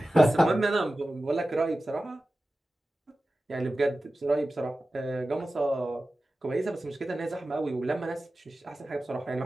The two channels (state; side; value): normal; both; correlation 0.95